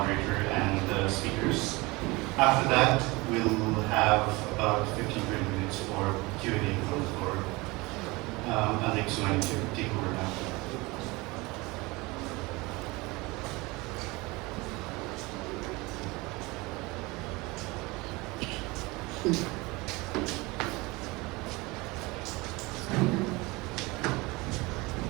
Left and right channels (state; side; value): quieter; left; 23.5 dB